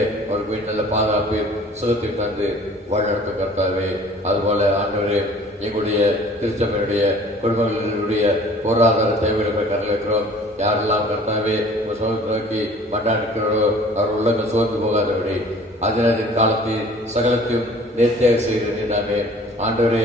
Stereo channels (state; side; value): normal; both; correlation 0.50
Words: அவருக்கு நல்ல பாதுகாப்பு சுகத்தை தந்து வழிநடத்த கர்த்தாவே. அதுபோல ஆண்டவரே எங்களுடைய திருச்சபையுடைய குடும்பங்களுடைய பொருளாதார தேவைகளை கருத்தில் வைக்கிறோம். யாரெல்லாம் கர்த்தாவே உங்கள் சுகத்தை நோக்கி மண்டாடிக்கிறோ அவர் உள்ளங்கள் சோர்ந்து போகாதபடி அதனதின் காலத்தில் சகலத்தையும் நேர்த்தியாக செய்கிறேன். நாமே ஆண்டவரே